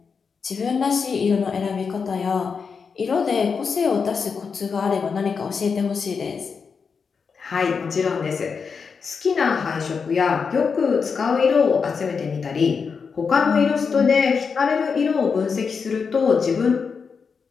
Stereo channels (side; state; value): right; quieter; 5.6 dB